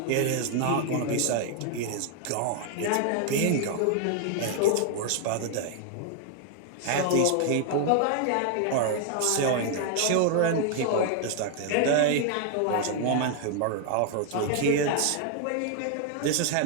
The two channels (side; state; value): both; different; correlation 0.00